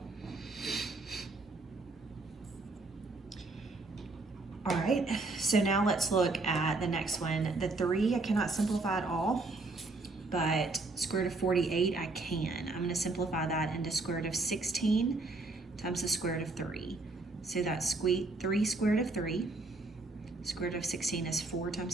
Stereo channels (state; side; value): quieter; left; 3.4 dB